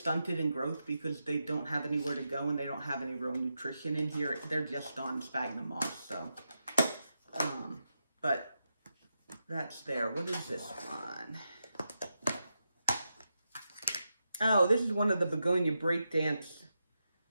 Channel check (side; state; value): both; inverted; correlation -0.87